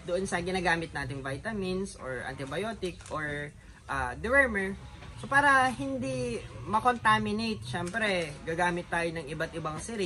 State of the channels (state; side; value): identical; both; correlation 1.00